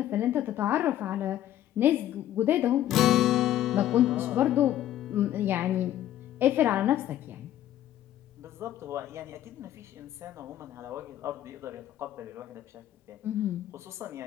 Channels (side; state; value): right; quieter; 12.4 dB